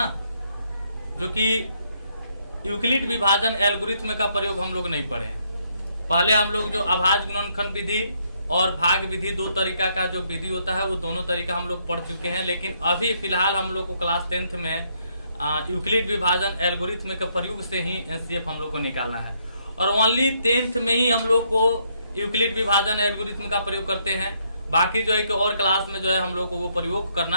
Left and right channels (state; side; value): inverted; both; correlation -0.73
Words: जो कि यूक्लिड विभाजन एल्गोरिथ्म का प्रयोग हम लोग नहीं पढ़े हैं। पहले हम लोग जो अभाज्य गुणनखंड विधि और भाग विधि, दो तरीका का जो विधि होता है वो दोनों तरीका हम लोग पढ़ चुके हैं। लेकिन अभी फिलहाल हम लोग को क्लास 10th में यूक्लिड विभाजन एल्गोरिथ्म के प्रयोग से ही एचसीएफ हम लोग को निकालना है, और ओनली 10th में ही हम लोग को यूक्लिड विभाजन एल्गोरिथ्म का प्रयोग करते हैं। बाकी जो है कि और क्लास में जो है हम लोग को वो प्रयोग